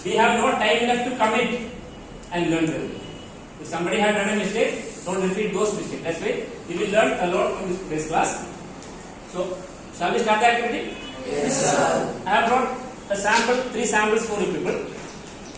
we have no time enough to commit and learn them. If somebody had done a mistake, don't repeat those mistakes. That's why we will learn a lot from this class. So shall we start the activity? Yes, sir. I have brought a sample, 3 samples for you people.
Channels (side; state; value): both; identical; correlation 1.00